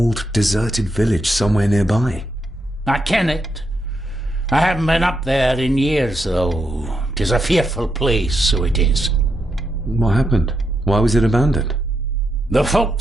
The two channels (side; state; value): both; normal; correlation 0.82